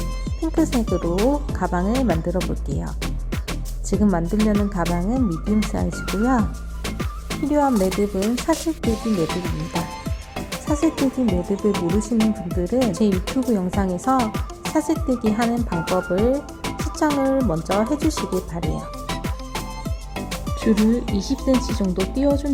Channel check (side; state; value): both; identical; correlation 1.00